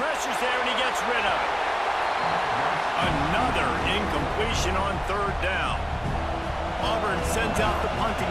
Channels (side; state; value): both; identical; correlation 1.00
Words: there, and he gets rid of it. Another incompletion on third down. Auburn sends out the